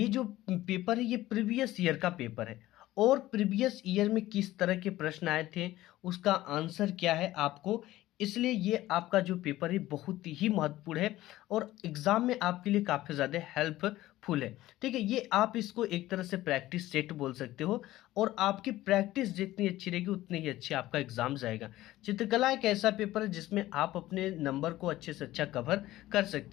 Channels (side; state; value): right; quieter; 15.8 dB